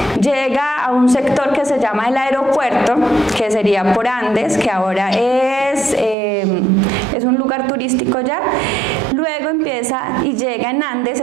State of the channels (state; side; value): drops out; left; at 6.2 s